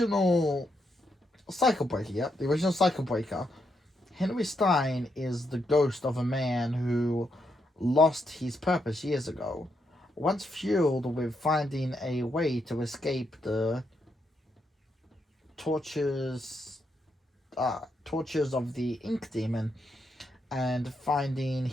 Cycle Breaker, yep. The original Cycle Breaker. Henry Stein is the ghost of a man who lost his purpose years ago. Once fueled with finding a way to escape the tortures of the Ink Demon and finding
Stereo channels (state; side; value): normal; both; correlation 0.80